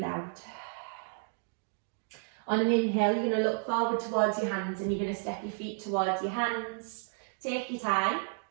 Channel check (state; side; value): silent; left; 56 dB below the other